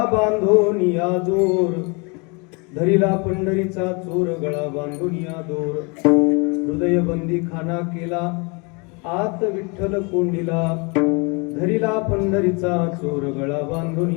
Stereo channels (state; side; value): quieter; right; 31.2 dB